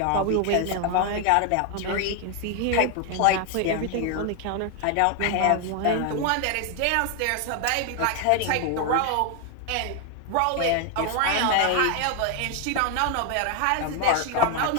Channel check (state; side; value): different; both; correlation 0.00